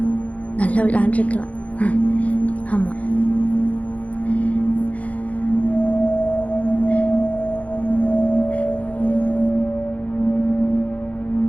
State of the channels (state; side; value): late; right; 0.067 ms